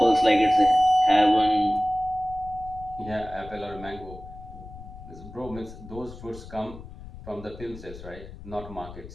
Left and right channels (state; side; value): noise; left; rumble, 15 dB below the sound